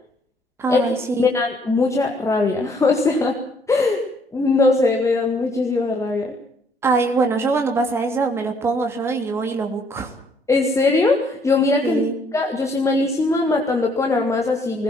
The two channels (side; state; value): both; normal; correlation 0.65